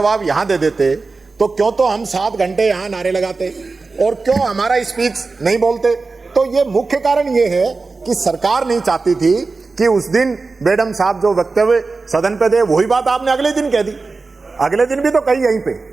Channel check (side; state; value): left; quieter; 4.0 dB